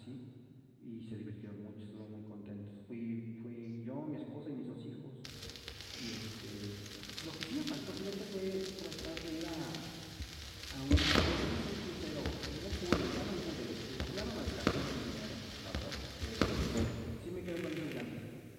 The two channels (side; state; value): both; identical; correlation 1.00